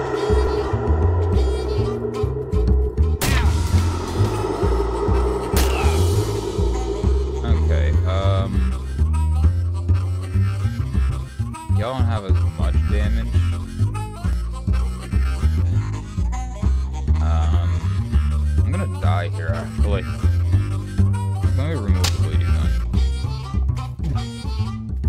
Y'all don't have as much damage. I'm gonna die here, actually. Let me remove the bleeding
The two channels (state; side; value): identical; both; correlation 1.00